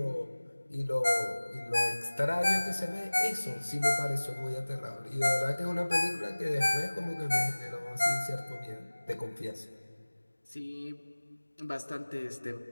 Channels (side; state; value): both; inverted; correlation -1.00